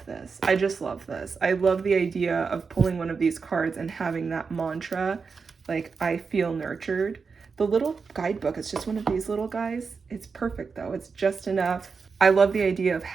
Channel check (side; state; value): left; quieter; 5.1 dB